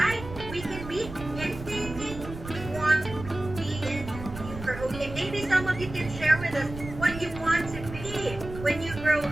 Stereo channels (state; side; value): noise; right; rumble, 11 dB below the sound